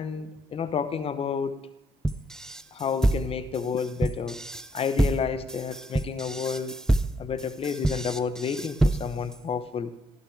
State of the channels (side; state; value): both; normal; correlation 0.74